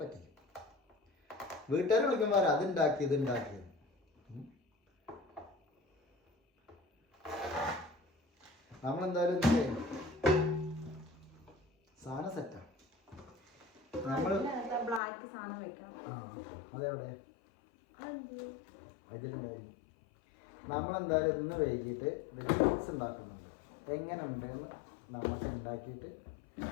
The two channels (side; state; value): right; drops out; at 15.0 s